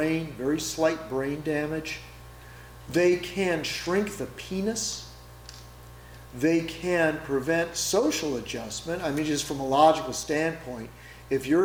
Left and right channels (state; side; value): identical; both; correlation 1.00